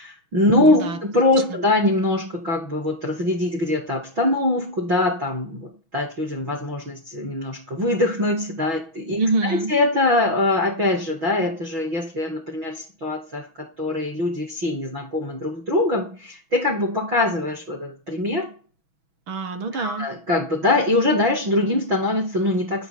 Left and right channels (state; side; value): late; left; 6.1 ms